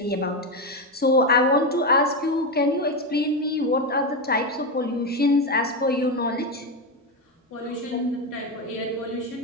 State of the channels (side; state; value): both; normal; correlation 0.11